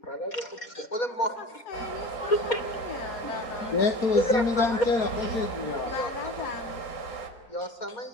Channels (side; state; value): right; late; 4.2 ms